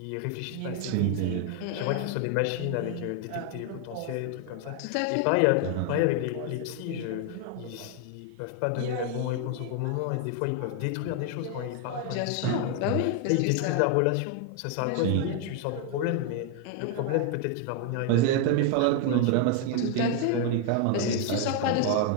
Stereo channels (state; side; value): different; both; correlation 0.01